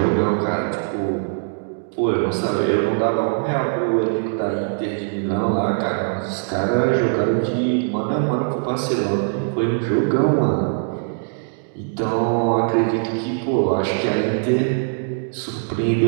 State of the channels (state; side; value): silent; left; digital silence